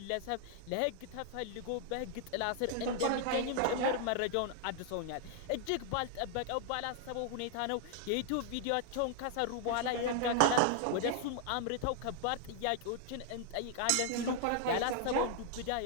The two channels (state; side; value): different; both; correlation 0.00